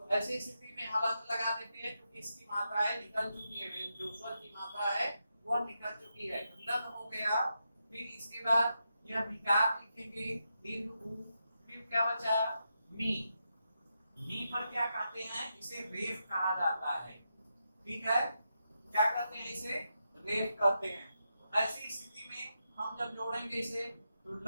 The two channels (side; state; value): both; inverted; correlation -0.86